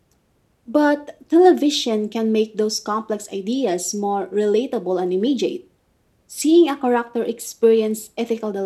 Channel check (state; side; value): identical; both; correlation 1.00